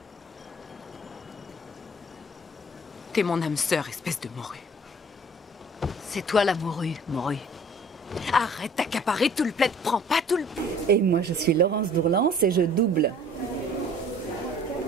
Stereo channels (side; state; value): both; normal; correlation 0.51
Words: T'es mon âme sœur, espèce de morue. C'est toi la morue, morue. Arrête d'accaparer tout le plaid, prends pas tout le... Et moi, je suis Laurence Dourlance et je double